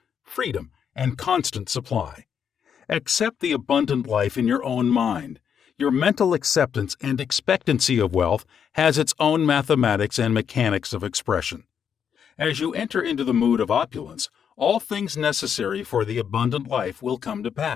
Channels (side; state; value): right; quieter; 7.8 dB